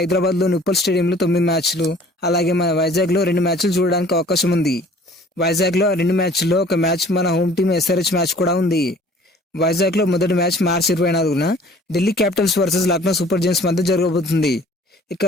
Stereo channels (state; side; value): normal; both; correlation 0.51